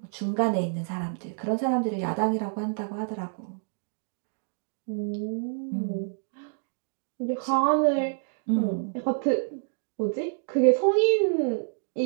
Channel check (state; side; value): silent; left; digital silence